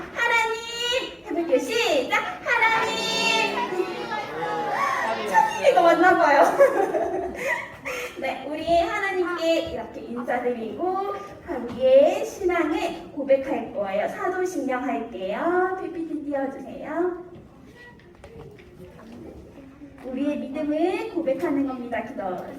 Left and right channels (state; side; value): identical; both; correlation 1.00